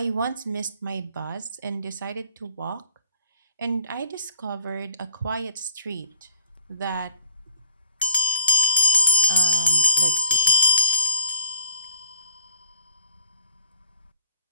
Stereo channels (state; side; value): inverted; both; correlation -0.57